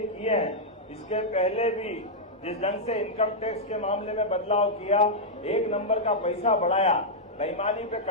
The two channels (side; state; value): both; normal; correlation -0.05